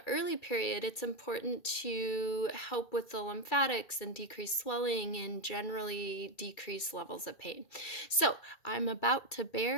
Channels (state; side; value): late; right; 2.3 ms